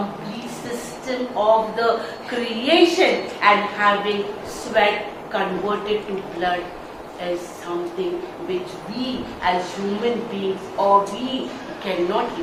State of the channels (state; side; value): identical; both; correlation 1.00